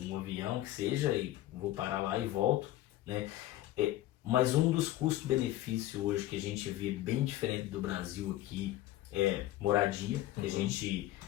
avião que seja, e vou parar lá e volto, né? Mas um dos custos-benefícios hoje que a gente vê bem diferente do Brasil aqui é moradia.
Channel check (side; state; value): right; quieter; 14.8 dB